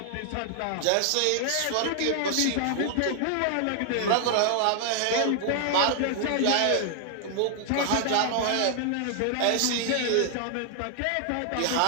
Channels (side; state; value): both; different; correlation 0.00